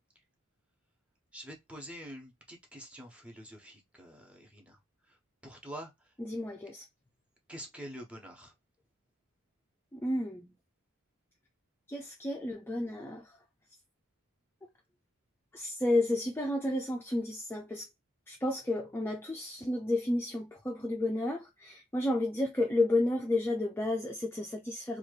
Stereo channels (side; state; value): both; normal; correlation 0.88